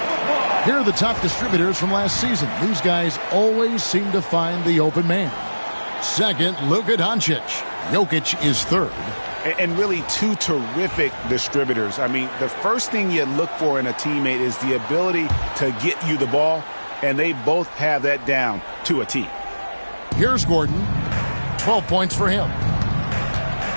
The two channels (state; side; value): inverted; both; correlation -1.00